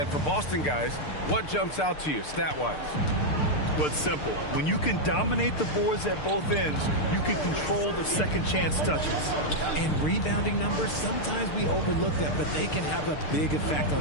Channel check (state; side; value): late; right; 6.7 ms